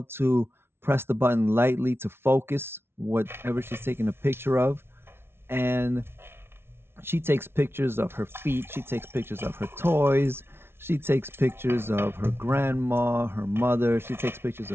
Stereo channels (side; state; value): left; late; 0.12 ms